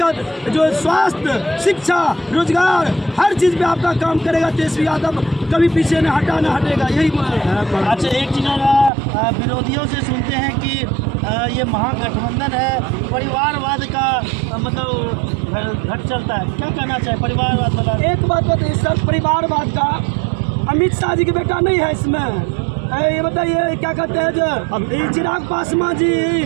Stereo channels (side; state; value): left; drops out; at 8.9 s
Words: जो स्वास्थ्य, शिक्षा, रोजगार, हर चीज़ पे आपका काम करेगा तेजस्वी यादव, कभी पीछे न हटेगा। यही अच्छा, एक चीज़ विरोधियों से सुनते हैं कि ये महागठबंधन है, परिवारवाद का मतलब घट चलता है, क्या कहना चाहे? परिवारवाद वाला एक बात बताइए सर, परिवारवाद का अमित शाह जी का बेटा नहीं है इसमें। ये बताइए क्या कहते हैं, जो चिराग पासवान जी